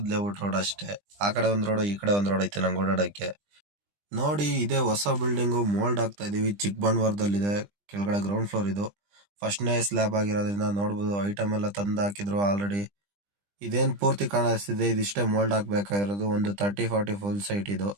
ಲೇಔಟ್ ರೋಡ್ ಅಷ್ಟೇ. ಆ ಕಡೆ ಒಂದ್ ರೋಡ್, ಈ ಕಡೆ ಒಂದ್ ರೋಡ್ ಐತೆ ನಂಗೆ ಓಡಾಡಕ್ಕೆ. ನೋಡಿ, ಇದೇ ಹೊಸ ಬಿಲ್ಡಿಂಗ್ ಮೋಲ್ಡ್ ಆಗ್ತಾ ಇದೀವಿ. ಚಿಕ್ಕಬಳ್ಳಾಪುರದಲ್ಲಿದೆ. ಕೆಳಗಡೆ ಗ್ರೌಂಡ್ ಫ್ಲೋರ್ ಇದು. ಫಸ್ಟ್ನೇ ಸ್ಲ್ಯಾಬ್ ಆಗಿರೋದ್ರಿಂದ ನೋಡ್ಬೋದು, ಐಟಮ್ ಎಲ್ಲ ತಂದು ಹಾಕಿದ್ರು ಆಲ್ರೆಡಿ. ಇದೇನ್ ಪೂರ್ತಿ ಕಾಣಿಸ್ತಿದೆ, ಇದಿಷ್ಟೇ ಮೋಲ್ಡ್ ಹಾಕ್ಬೇಕಾಗಿರೋದು. ಒಂದು 30-40 ಫುಲ್ ಸೈಟ್ ಇದು.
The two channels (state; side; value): late; left; 20 ms